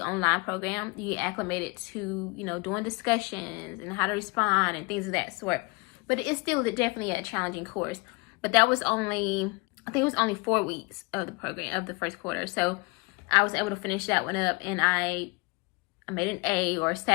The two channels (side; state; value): right; quieter; 28.3 dB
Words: online program, you get acclimated to, doing discussions and how to respond and things of that sort. But it's still definitely a challenging course. But that was only, I think it was only 4 weeks of the program, of the first quarter. So I was able to finish that one up, and I made an A, or